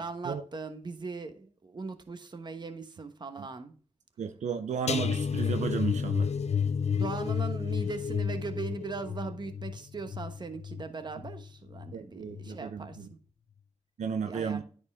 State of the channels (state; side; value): normal; both; correlation 0.65